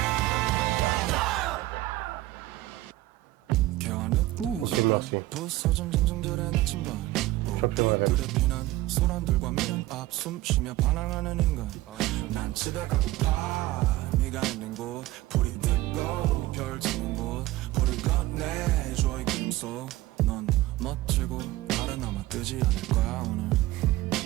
Ouh, Ok, merci. 부서진 정성들의 나침반 Champion 불에 피난 소란들과 미련 앞 숨쉬며 반항하는 인간 난 집에 가고파 네가 있는 곳 불이 뜨고 별 지는 곳 불을 건네줘 이 기름 속넌 멋지고 달은 아마 뜨지 않을 거야 오늘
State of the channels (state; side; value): quieter; left; 17.2 dB